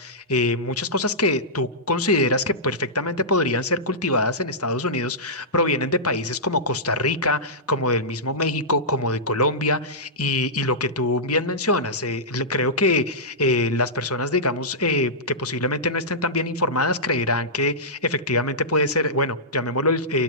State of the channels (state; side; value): normal; both; correlation -0.14